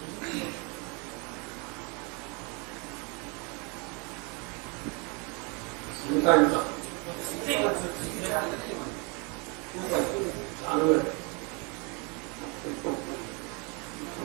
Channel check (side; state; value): left; quieter; 31.9 dB